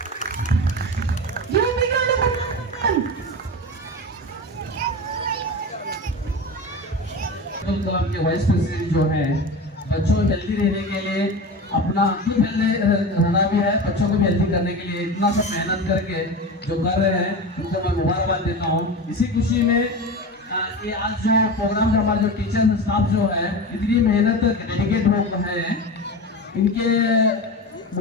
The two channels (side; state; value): both; normal; correlation 0.27